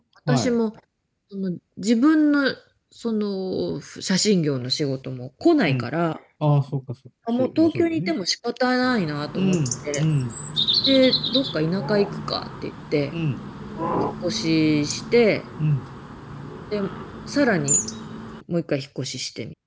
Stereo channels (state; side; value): identical; both; correlation 1.00